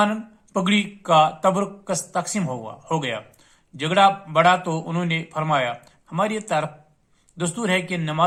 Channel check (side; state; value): both; identical; correlation 1.00